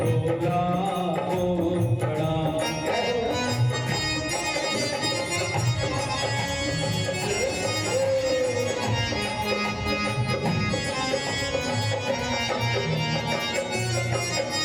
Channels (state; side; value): identical; both; correlation 1.00